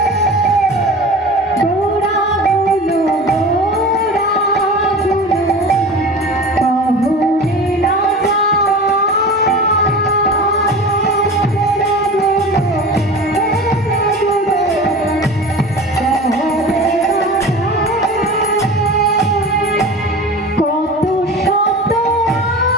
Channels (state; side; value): normal; both; correlation 0.34